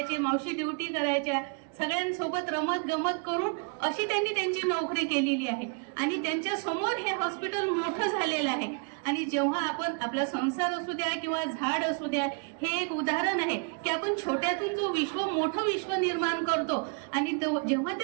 मावशी ड्युटी करायच्या, सगळ्यांसोबत रमत गमत करून अशी त्यांनी त्यांची नोकरी केलेली आहे. आणि त्यांच्या समोर हे हॉस्पिटल मोठं झालेलं आहे. आणि जेव्हा आपण आपला संसार असू द्या किंवा झाड असू द्या, हे एक उदाहरण आहे की आपण छोट्यातून जो मोठं विश्व निर्माण करतो आणि जेव्हा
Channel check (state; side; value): quieter; left; 37.0 dB